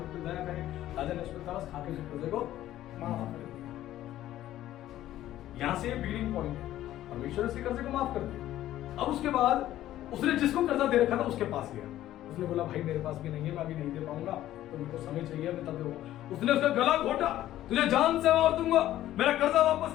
पर दया करे। राजा ने उसको तरस खा के उस कर्जे को माफ कर दिया। यहाँ से बिगिनिंग पॉइंट है, परमेश्वर उसके कर्जे को माफ कर दिया। अब उसके बाद उसने जिसको कर्जा दे रखा था उसके पास गया, उसने बोला भाई मेरे पास भी नहीं है, मैं अभी नहीं दे पाऊंगा, तो मेरे को समय चाहिए, मैं तब दूंगा। उसने उसका गला घोटा, तुझे जान से मार दूंगा, मेरा कर्जा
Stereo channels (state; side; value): quieter; right; 13.5 dB